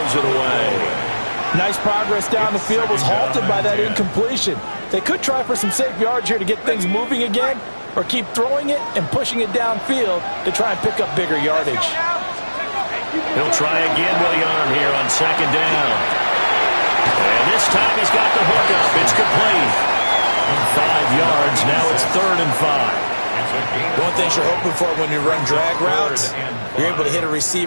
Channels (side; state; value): both; inverted; correlation -1.00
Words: it away. Nice progress down the field, was halted by that incompletion. They could try for some safe yards here to get things moving again, or keep throwing it and pushing it downfield to try and pick up bigger yardage. He'll try again with the arm here on second down. And this time he's got the hook up. It's complete. 5 yards. Now it's 3rd and 5. One thing you're hoping for when you run drag routes, you're able to hit a